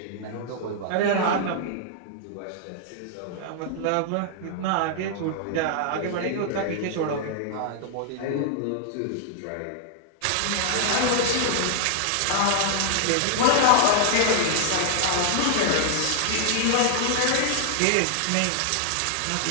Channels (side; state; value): both; different; correlation -0.01